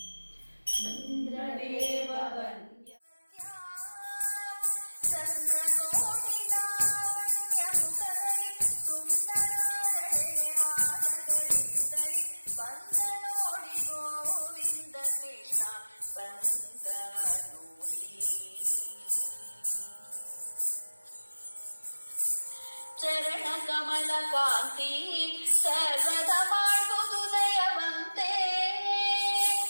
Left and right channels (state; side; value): inverted; both; correlation -1.00